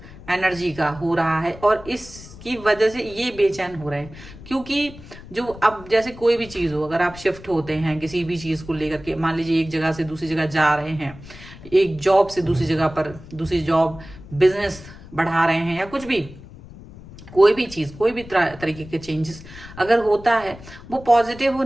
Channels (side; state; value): left; noise; rumble, 17 dB below the sound